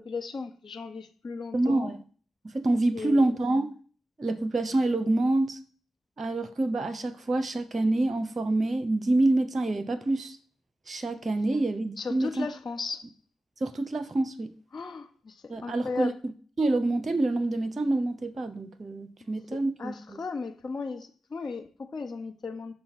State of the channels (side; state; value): both; normal; correlation 0.95